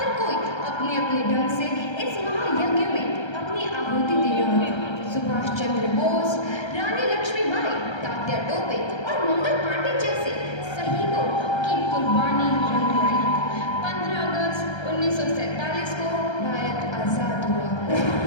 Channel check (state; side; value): late; right; 1.3 ms